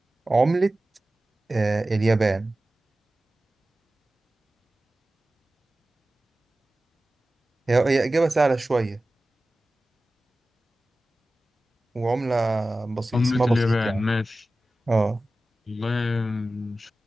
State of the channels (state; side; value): normal; both; correlation 0.95